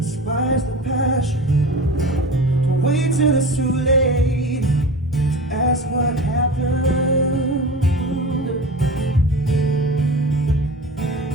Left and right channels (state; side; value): normal; both; correlation 0.33